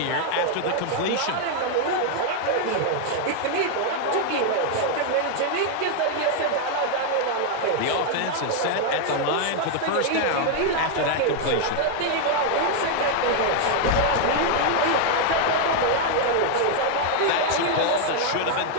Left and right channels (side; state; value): both; different; correlation 0.00